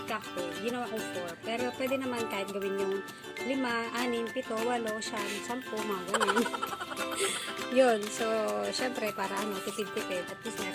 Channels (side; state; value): both; identical; correlation 1.00